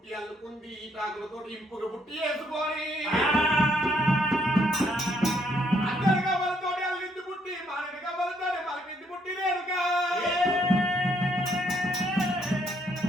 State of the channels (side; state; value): both; normal; correlation 0.70